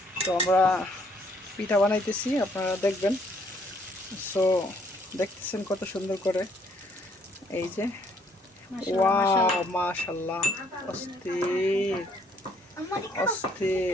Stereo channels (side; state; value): both; normal; correlation 0.66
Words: তো আমরা পিঠা বানাইতেছি, আপনারা দেখবেন। সো দেখতেছেন কত সুন্দর করে, এই যে ওয়াও মাশাআল্লাহ, অস্থির